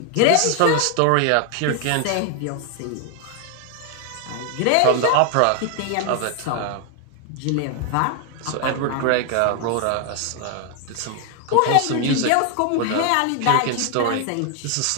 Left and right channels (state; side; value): different; both; correlation 0.00